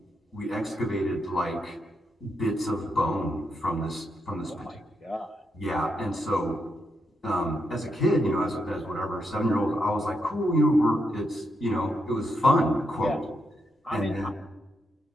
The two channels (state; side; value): normal; both; correlation 0.82